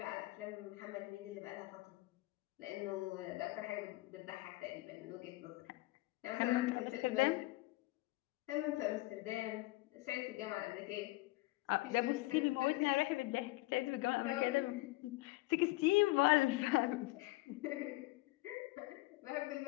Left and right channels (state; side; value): quieter; right; 20.9 dB